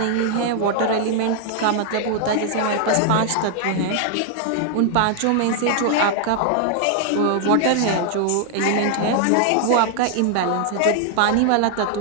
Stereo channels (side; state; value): both; different; correlation 0.00